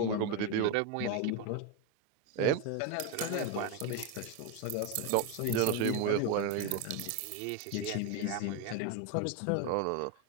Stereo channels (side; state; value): both; different; correlation 0.02